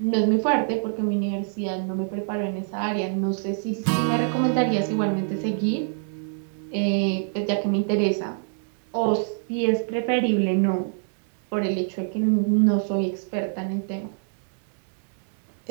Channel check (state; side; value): silent; left; digital silence